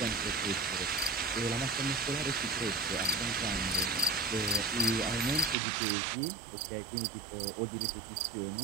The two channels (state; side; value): drops out; left; at 5.6 s